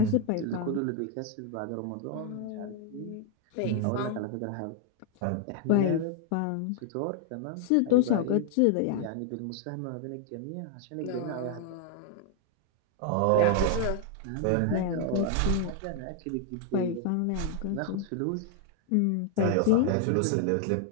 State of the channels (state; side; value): different; both; correlation 0.00